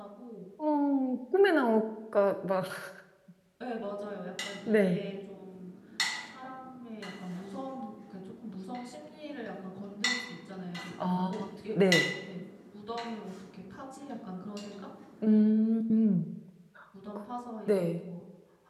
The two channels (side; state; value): both; identical; correlation 1.00